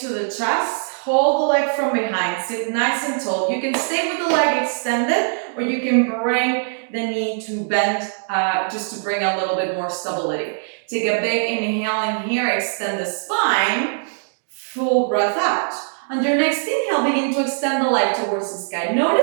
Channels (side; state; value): left; silent; digital silence